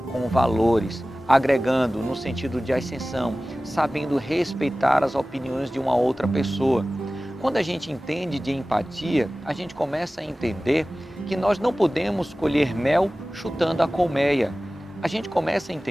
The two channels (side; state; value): both; normal; correlation 0.97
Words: com valores, agregando no sentido de ascensão, sabendo respeitar as opiniões de uma outra pessoa. Quando a gente entende de empatia, a gente começa a entender que nós não podemos colher mel chutando a colmeia. A gente começa a